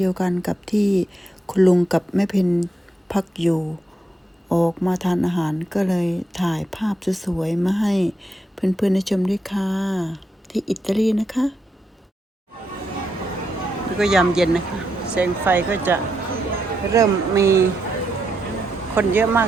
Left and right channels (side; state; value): both; normal; correlation 0.82